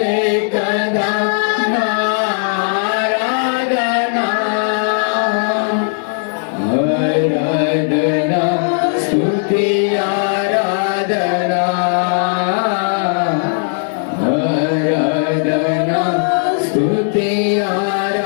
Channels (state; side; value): silent; right; 62 dB below the other